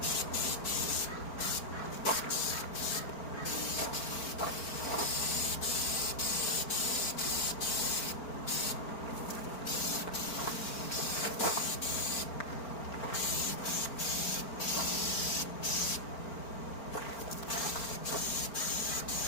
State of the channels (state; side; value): late; right; 4.5 ms